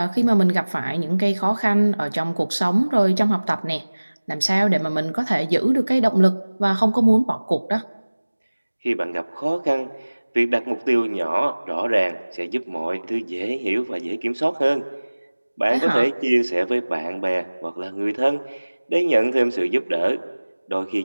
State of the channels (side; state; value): both; inverted; correlation -1.00